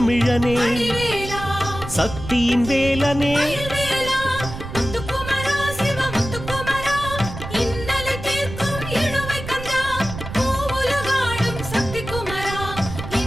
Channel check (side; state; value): right; noise; rumble, 9 dB below the sound